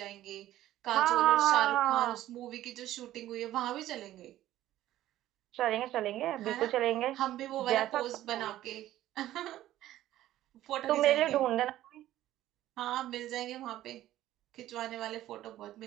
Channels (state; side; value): quieter; left; 13.9 dB